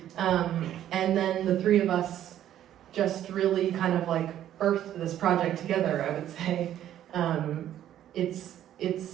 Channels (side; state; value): left; quieter; 11.5 dB